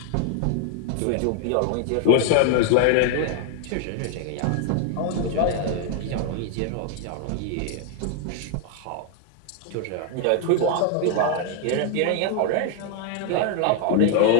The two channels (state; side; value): different; both; correlation 0.00